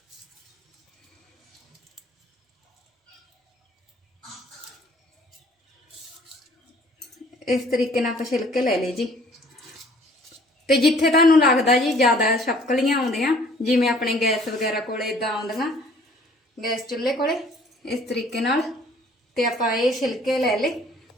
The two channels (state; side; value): normal; both; correlation 0.56